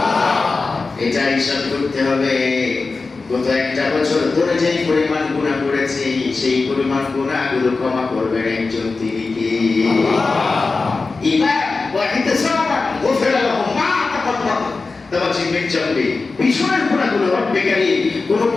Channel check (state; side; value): quieter; right; 4.0 dB